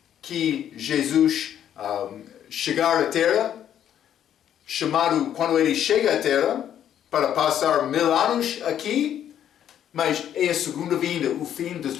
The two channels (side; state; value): right; quieter; 10.1 dB